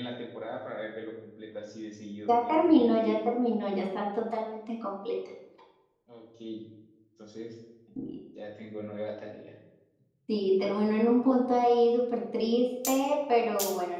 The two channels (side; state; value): both; identical; correlation 1.00